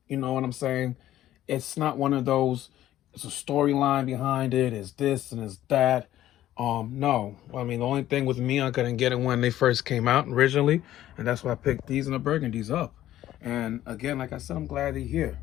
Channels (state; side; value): quieter; right; 13.3 dB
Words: You know what I'm saying? It's not one of those, it's a storyline behind it. It's this and it's that. No. I mean, the only thing with me, I couldn't get it when they first came out originally, and that's why I picked these and the burgundies up. And again, like I said, I'm glad they're here.